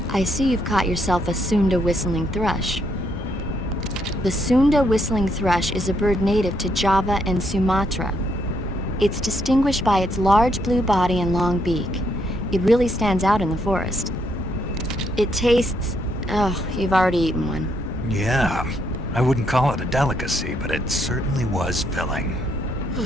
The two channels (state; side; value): normal; both; correlation 0.74